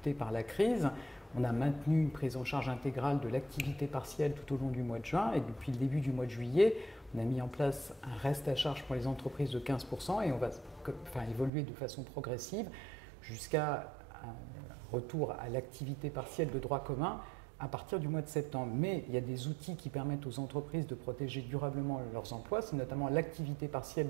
par la crise. On a maintenu une prise en charge intégrale de l'activité partielle tout au long du mois de juin et depuis le début du mois de juillet, On a mis en place un reste à charge pour les entreprises de 15% et on va évoluer de façon progressive jusqu'à un retour à l'activité partielle de droit commun à partir du mois de septembre. Mais il y a des outils qui permettent aux entreprises de protéger durablement leurs emplois, c'est notamment l'activité partielle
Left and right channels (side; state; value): left; drops out; at 11.5 s